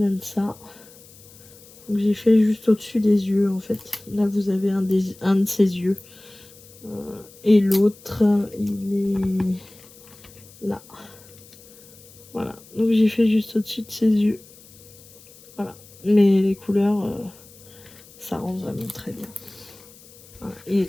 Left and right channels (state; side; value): noise; left; hiss, 23 dB below the sound